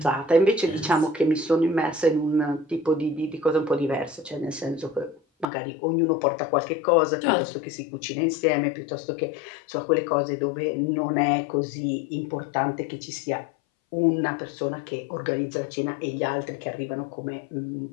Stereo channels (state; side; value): drops out; right; at 5.5 s